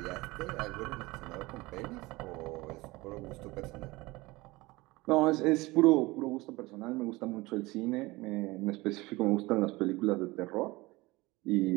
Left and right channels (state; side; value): quieter; left; 21.5 dB